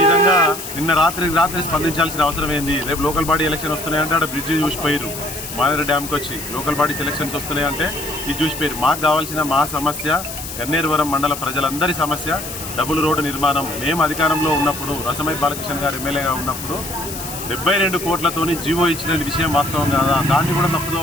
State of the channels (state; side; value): noise; left; hiss, 9 dB below the sound